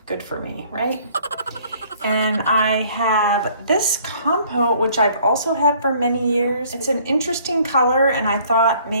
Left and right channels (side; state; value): both; inverted; correlation -0.58